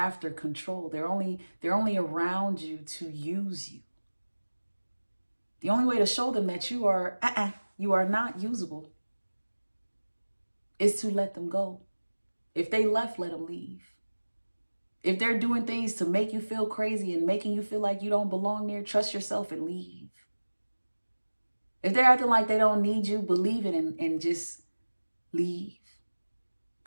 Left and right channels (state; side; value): inverted; both; correlation -1.00